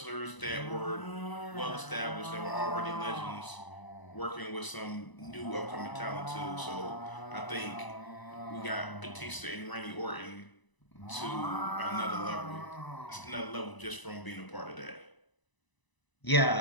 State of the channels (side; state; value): right; late; 1.0 ms